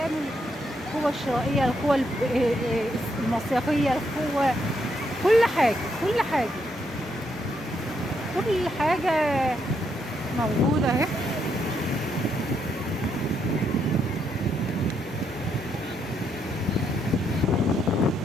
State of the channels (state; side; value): normal; both; correlation 0.77